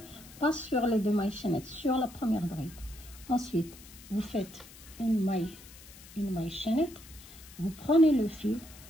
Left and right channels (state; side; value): noise; left; hiss, 19 dB below the sound